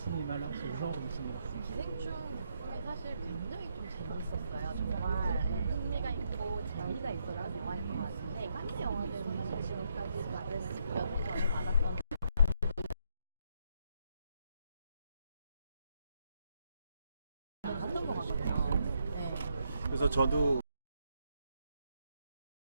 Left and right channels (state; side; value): inverted; both; correlation -0.77